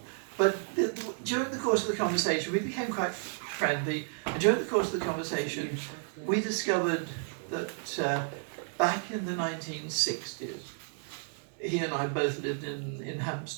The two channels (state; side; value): silent; left; 57 dB below the other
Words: But during the course of the conversation, we became quite friendly. And during the course of the conversation, we discovered that back in the 1960s, he and I both lived in